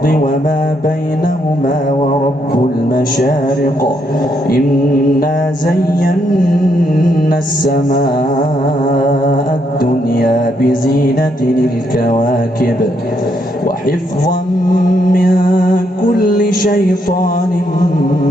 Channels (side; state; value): both; normal; correlation 0.76